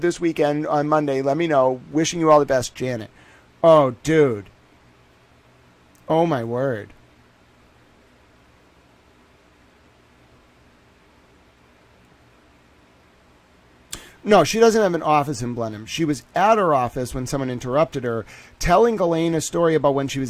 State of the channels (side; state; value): both; identical; correlation 1.00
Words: weekend on Monday. Let me know. Wishing you all the best, Janet. Oh, dude. Oh, my word. No, she doesn't have an office in Blenheim. She was at her office when someone interrupted her, telling Ghislaine a story about when she was